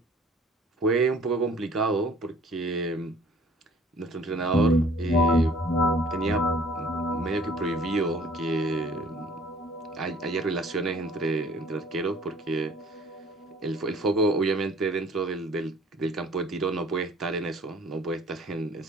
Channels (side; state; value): both; normal; correlation 0.53